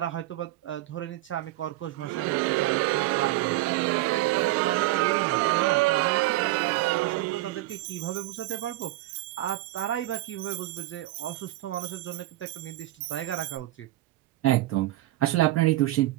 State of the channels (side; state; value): left; quieter; 16.7 dB